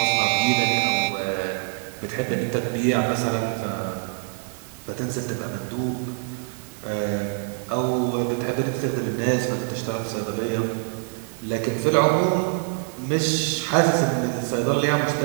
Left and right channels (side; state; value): left; silent; 57 dB below the other